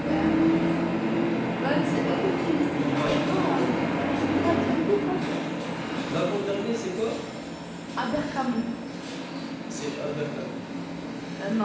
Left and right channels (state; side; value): identical; both; correlation 1.00